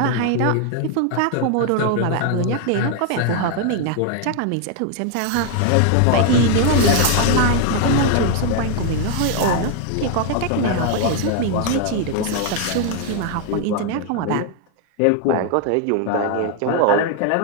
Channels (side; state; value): both; different; correlation 0.00